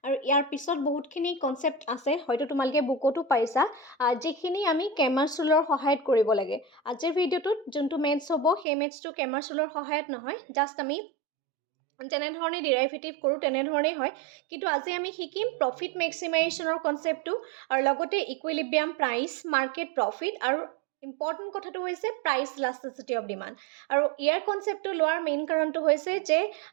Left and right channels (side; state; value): left; drops out; at 8.7 s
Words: আৰু ইয়াৰ পিছত বহুতখিনি কনচেপ্ট আছে, হয়তো তোমালোকে বুকতো পাইছা, যিখিনি আমি কেমাৰ ৰুলৰ সহায়ত কৰিব লাগে। আজিৰ ভিডিঅ'টোত যোনটো মেথছ হ'ব সেই মেথছটো কেমাৰ ৰুলৰ সহায়ত নহয়, জাষ্ট আমি যেনেধৰণে ডিৰাইভেটিভ কৰোঁ তেনেধৰণেই হয়, কিন্তু আজি আমি শিকিম প্ৰফিট মেক্সিমাইজেশ্যনৰ কনচেপ্টটো আৰু লগতে ইকুইলিব্ৰিয়াম প্ৰাইচ, মাৰ্কেট প্ৰফিট আৰু ইম্পৰ্টেণ্ট কথাটো হৈছে প্ৰাইচ ইলাষ্টিচিটি অফ ডিমাণ্ড। আৰু ইয়াৰ কনচেপ্টটো লোৱাৰ মেইন কাৰণটো হৈছে যে